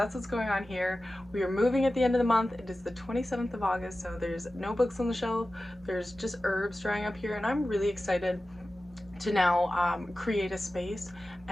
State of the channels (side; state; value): both; normal; correlation 0.95